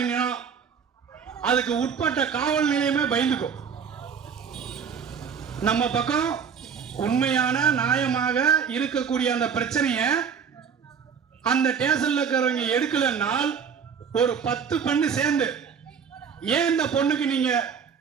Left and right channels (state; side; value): quieter; left; 6.7 dB